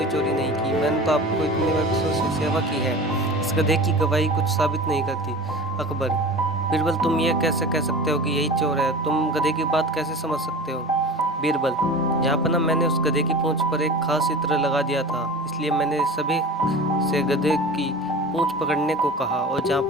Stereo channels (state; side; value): normal; both; correlation 0.36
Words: चोरी नहीं की, मैंने तो आपको इतने वर्षों से सेवा की है, इस गधे की गवाही कुछ साबित नहीं करती। अकबर, बीरबल तुम ये कैसे कह सकते हो कि यही चोर है, तुम गधे की बात कैसे समझ सकते हो। बीरबल, जहाँपना मैंने उस गधे की पूंछ पर एक खास इत्र लगा दिया था, इसलिए मैंने सभी से गधे की पूंछ पकड़ने को कहा। और